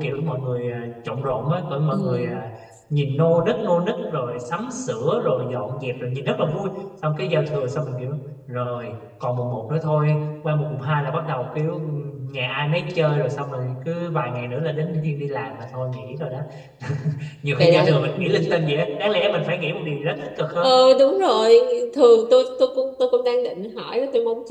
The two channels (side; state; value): both; identical; correlation 1.00